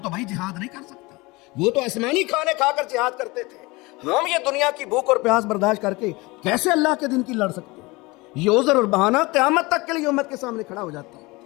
بھائی جہاد نہیں کر سکتے۔ وہ تو آسمانی کھانے کھا کر جہاد کرتے تھے، ہم یہ دنیا کی بھوک اور پیاس برداشت کر کے کیسے اللہ کے دین کی لڑ سکتے ہیں؟ یہ عذر اور بہانہ قیامت تک کے لیے امت کے سامنے کھڑا ہو جاتا ہے۔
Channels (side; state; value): right; quieter; 23.6 dB